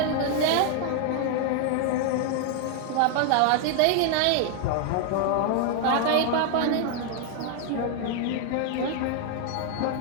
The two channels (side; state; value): both; different; correlation 0.00